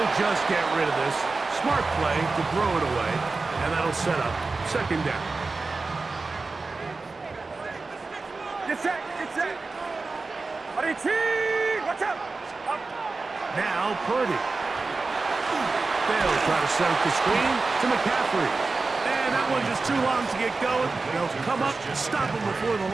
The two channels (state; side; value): quieter; left; 3.8 dB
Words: just get rid of this. Smart play to throw it away. And that'll set up 2nd down. Get set. Watch out. Up. Now Purdy. They'll try to set up the screen to McCaffrey. And that one just too long to get going. They'll come up and stop him before the